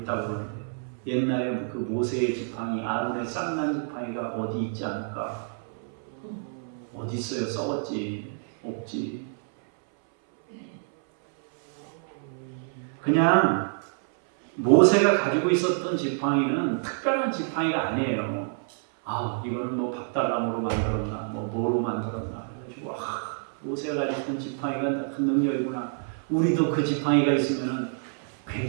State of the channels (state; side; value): silent; left; 60 dB below the other